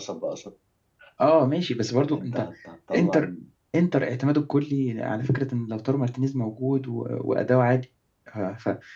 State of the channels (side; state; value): both; identical; correlation 1.00